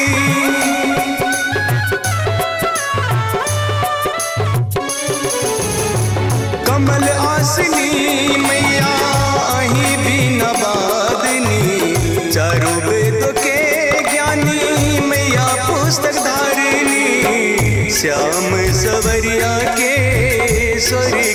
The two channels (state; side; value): identical; both; correlation 1.00